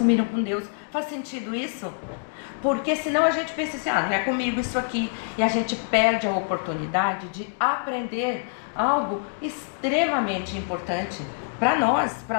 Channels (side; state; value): right; silent; 61 dB below the other